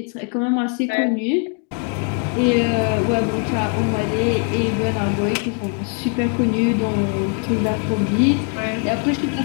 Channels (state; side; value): quieter; right; 38.7 dB